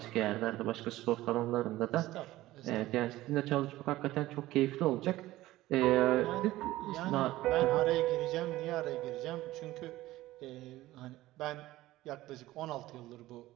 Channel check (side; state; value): left; quieter; 16.6 dB